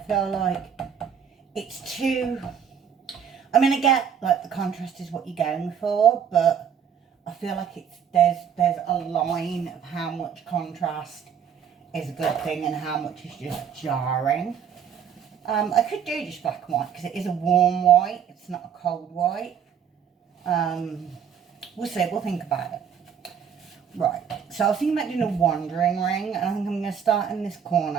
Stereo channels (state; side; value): quieter; left; 7.8 dB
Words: like it's too, I get like the contrast is what you're going for, but I feel like there's a line of how much contrast is a good thing and how much is just jarring. I could do just black and white because it is a warm white. It's not a cold white. We'll see. We'll think about it. Right. So I was thinking about doing a wandering ring. And I think I'm going to start in this